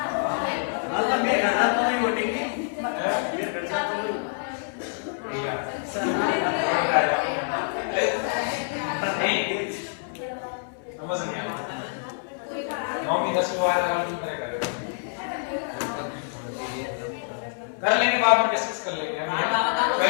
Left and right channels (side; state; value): right; silent; 56 dB below the other